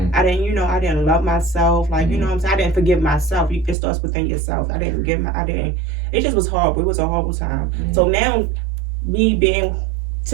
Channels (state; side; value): drops out; left; at 3.8 s